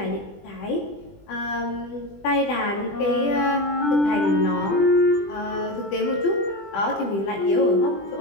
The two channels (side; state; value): right; late; 20 ms